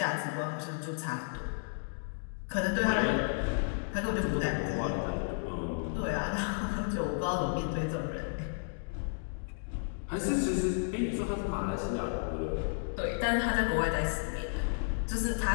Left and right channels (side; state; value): right; silent; digital silence